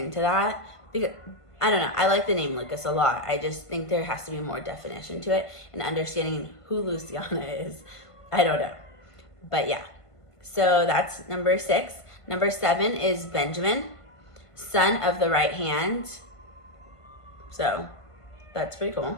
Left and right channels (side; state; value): right; late; 1.5 ms